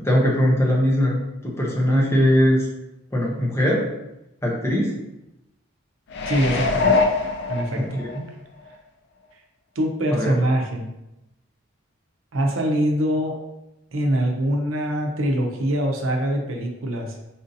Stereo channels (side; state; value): both; normal; correlation 0.68